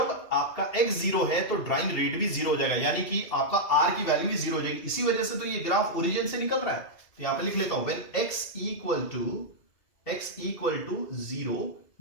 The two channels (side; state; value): right; late; 2.6 ms